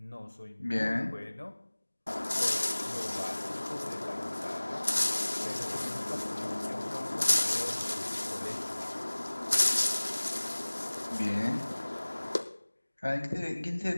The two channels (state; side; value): inverted; both; correlation -1.00